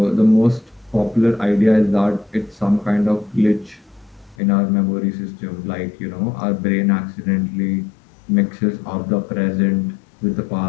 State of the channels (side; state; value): right; drops out; at 4.4 s